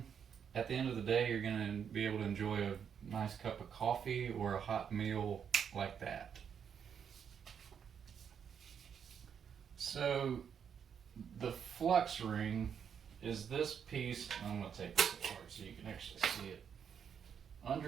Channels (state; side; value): quieter; left; 7.6 dB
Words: at the end of the day, you're going to be able to enjoy a nice cup of coffee or a hot meal like that. So the flux ring is this piece. I'm going to take this apart so you can actually see it.